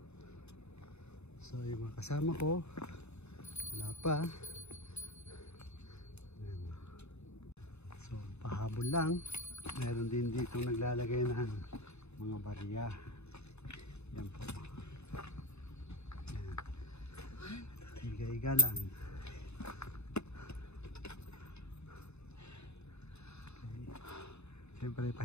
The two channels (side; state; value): right; late; 0.81 ms